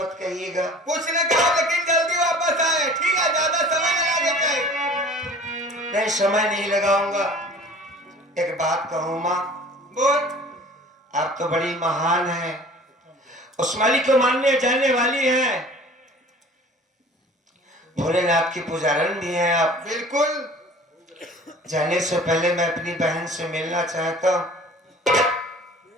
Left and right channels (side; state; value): both; normal; correlation 0.46